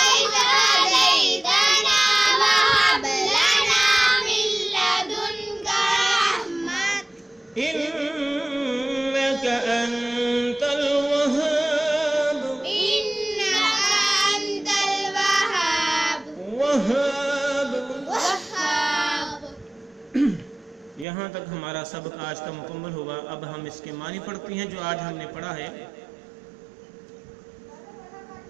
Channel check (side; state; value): left; drops out; at 21.1 s